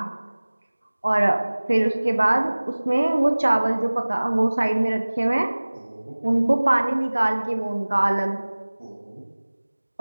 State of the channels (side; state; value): both; inverted; correlation -1.00